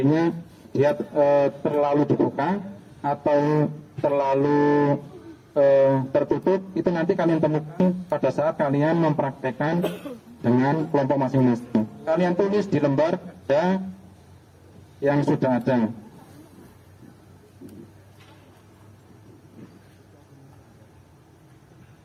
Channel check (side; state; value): both; identical; correlation 1.00